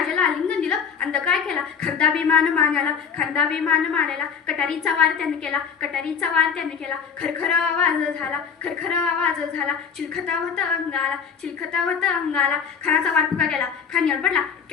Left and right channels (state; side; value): quieter; right; 6.7 dB